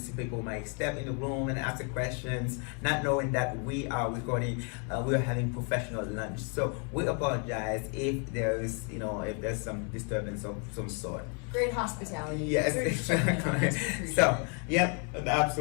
people might step in the room and ask the questions, not knowing that we are recording. We are having professional lunch, so we apologize if there is, if there's some disturbance of some sort. Great hospitality. Yes, exactly. So, yep,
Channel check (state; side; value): quieter; right; 38.8 dB